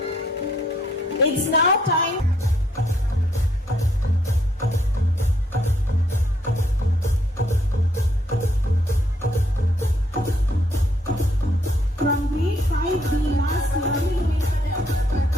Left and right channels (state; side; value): normal; both; correlation 0.70